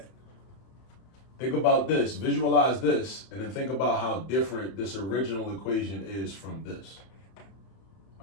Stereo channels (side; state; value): right; late; 31 ms